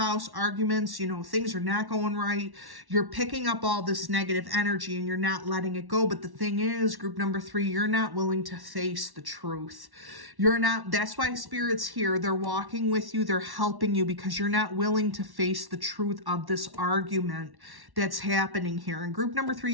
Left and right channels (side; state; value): left; late; 1.1 ms